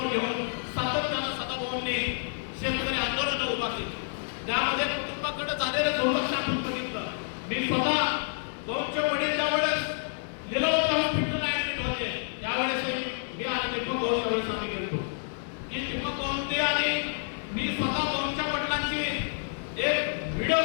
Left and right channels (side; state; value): right; silent; digital silence